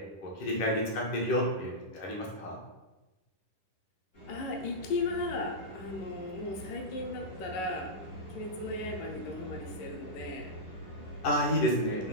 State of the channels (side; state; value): right; late; 10 ms